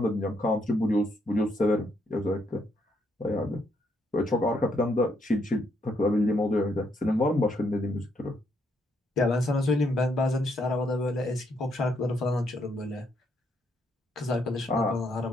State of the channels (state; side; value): normal; both; correlation 0.75